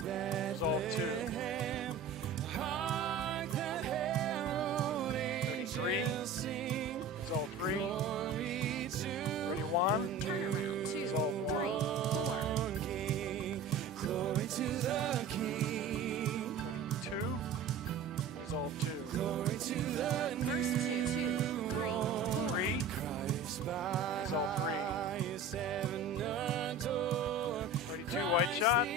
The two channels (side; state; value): left; quieter; 4.4 dB